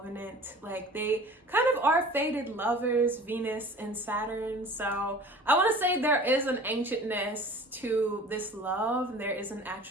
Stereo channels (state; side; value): normal; both; correlation 0.43